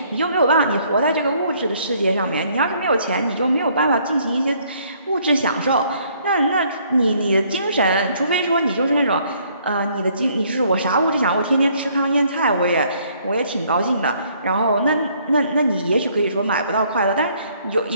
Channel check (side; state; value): both; inverted; correlation -0.64